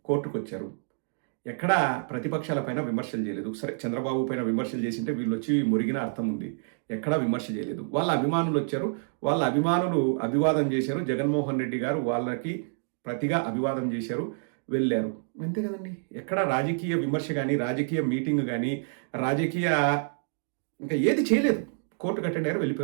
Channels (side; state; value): left; silent; digital silence